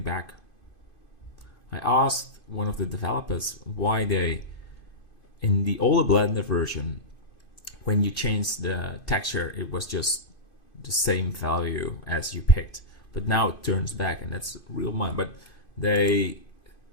back. I asked one of the developers why they, in the older Blender version, when you changed the texture, it was just the same value as you picked. But now it turns back, and that's real mind. But they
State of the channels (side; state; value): right; late; 2.5 ms